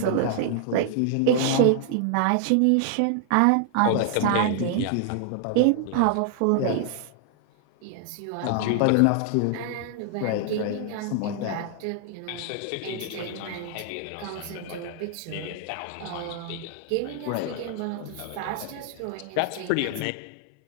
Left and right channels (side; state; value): both; different; correlation 0.00